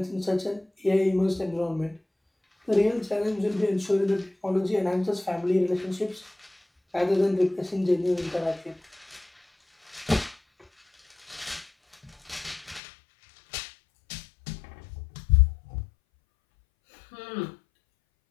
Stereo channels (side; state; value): right; drops out; at 12.8 s